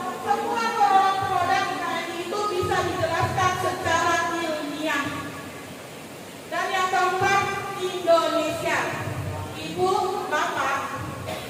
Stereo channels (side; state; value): both; identical; correlation 1.00